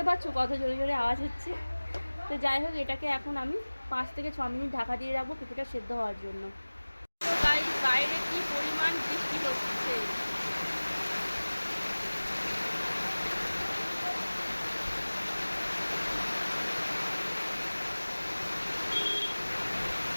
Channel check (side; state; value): both; inverted; correlation -1.00